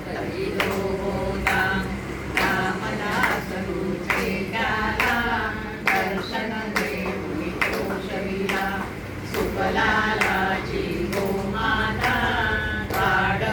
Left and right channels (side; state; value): both; identical; correlation 1.00